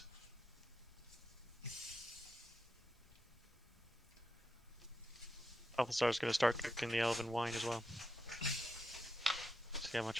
Balthazar's going to start cooking the elven wine as well. See how much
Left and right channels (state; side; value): normal; both; correlation 0.86